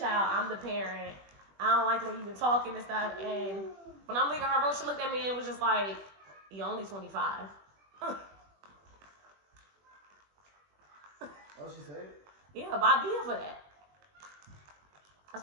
I'm the parent. I don't like the way you've been talking and stuff. And when I'm leaving her room, she looked at me and was just like, you're only 25. Oh, she said it? Yeah, but I'll be here for that. I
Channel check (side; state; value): left; late; 21 ms